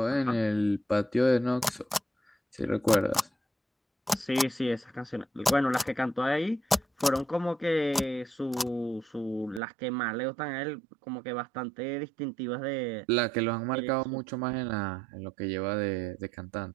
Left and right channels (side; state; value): left; drops out; at 9.6 s